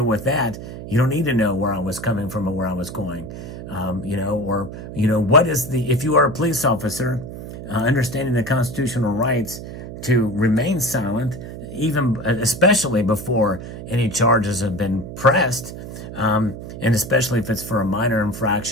with that. You don't need to know where I was coming from or where I was going. What is if you are a police officer, understanding the constitutional rights to remain silent, especially before any charges have been pressed, And especially if it's for a minor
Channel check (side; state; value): right; noise; hum, 11 dB below the sound